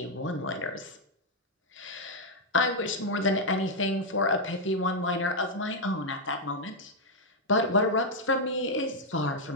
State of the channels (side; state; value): both; normal; correlation -0.02